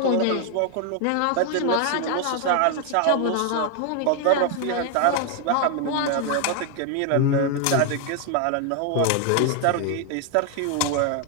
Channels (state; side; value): different; both; correlation 0.01